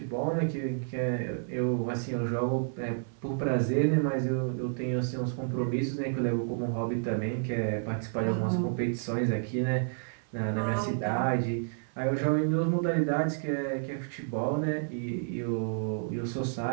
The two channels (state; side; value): silent; left; 58 dB below the other